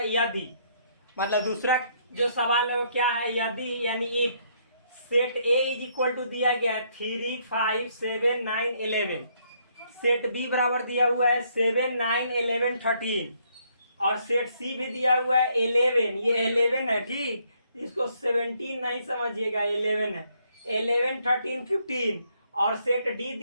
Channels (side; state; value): both; inverted; correlation -0.70